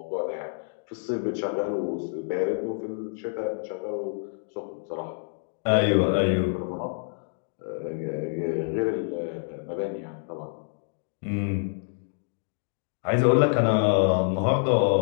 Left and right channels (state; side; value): silent; right; digital silence